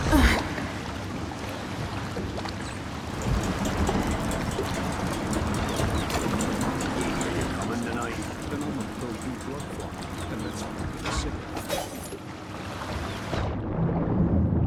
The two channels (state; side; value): identical; both; correlation 1.00